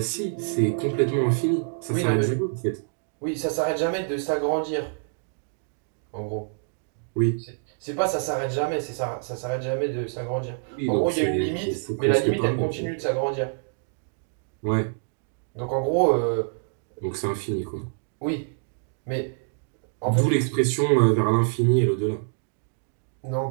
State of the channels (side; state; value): left; silent; digital silence